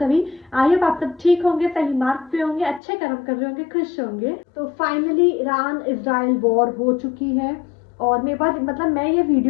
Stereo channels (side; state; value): right; drops out; at 2.8 s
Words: आई होप आप सब ठीक होंगे, सही मार्ग पे होंगे, अच्छे कर्म कर रहे होंगे, खुश होंगे। तो फाइनली ईरान इजराइल वॉर हो चुकी है और मेरे पास मैं ये